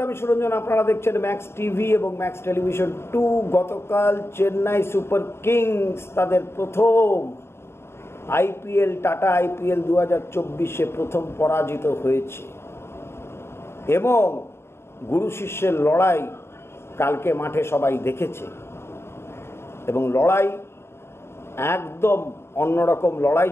আমি সুরঞ্জন। আপনারা দেখছেন ম্যাক্স টিভি এবং ম্যাক্স টেলিভিশন 2। গতকাল চেন্নাই সুপার কিংস তাদের প্রথম আইপিএল, টাটা আইপিএল 2024-এ প্রথম পরাজিত হয়েছে এবং গুরু শিষ্যের লড়াই কালকে মাঠে সবাই দেখেছে এবং লড়াই একদম অন্যরকম লড়াই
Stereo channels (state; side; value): late; right; 0.12 ms